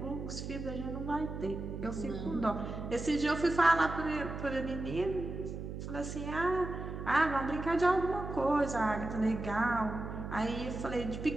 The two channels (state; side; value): noise; right; hum, 7 dB below the sound